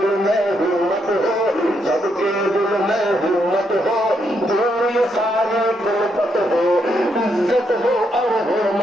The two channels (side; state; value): both; normal; correlation 0.78